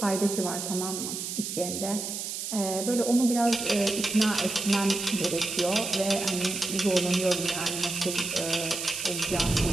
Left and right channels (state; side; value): noise; right; hiss, 5 dB below the sound